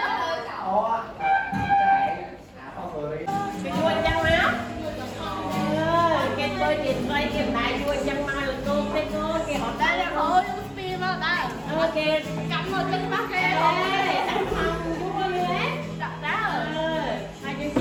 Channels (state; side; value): identical; both; correlation 1.00